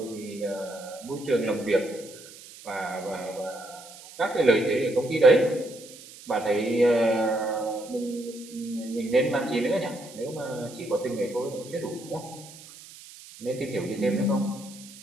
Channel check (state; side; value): noise; right; hiss, 18 dB below the sound